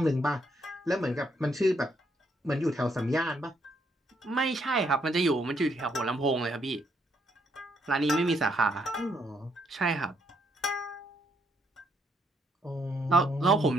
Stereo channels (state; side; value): normal; both; correlation 0.73